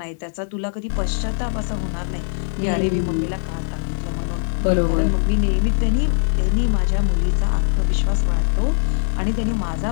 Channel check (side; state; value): right; silent; digital silence